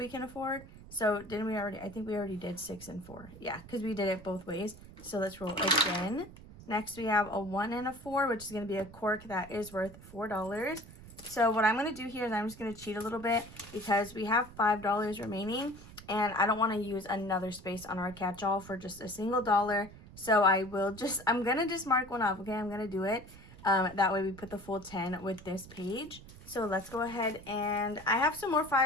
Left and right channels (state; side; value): noise; right; rumble, 18 dB below the sound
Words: can afford. So didn't we already? I think we already did 6 and 4. Yeah, because we did it both ways. So let's roll again. Next, we have a 1 and a 4, which is going to be a cork that is worth $4. So what I'm going to do here is I'm just going to cheat a little bit because we have $5 remaining, and I don't want to use another space on our catch-all for just a single dollar. So I'm going to just mark one off, okay? I'm going to do it. That way we put the full 10 with this page. So let's go ahead, and I have some more